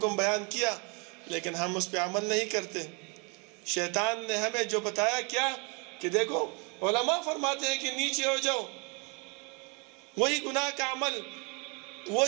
بیان کیا لیکن ہم اس پہ عمل نہیں کرتے۔ شیطان نے ہمیں جو بتایا کیا کہ دیکھو علماء فرماتے ہیں کہ نیچے ہو جاؤ، وہی گناہ کا عمل،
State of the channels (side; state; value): left; quieter; 32.1 dB